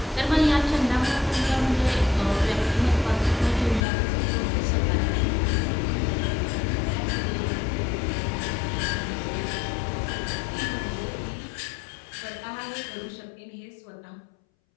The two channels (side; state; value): right; drops out; at 3.9 s